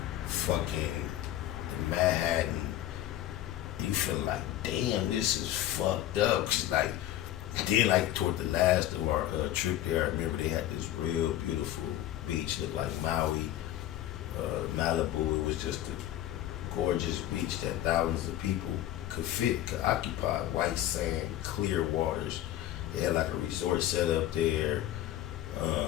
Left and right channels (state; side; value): quieter; right; 13.1 dB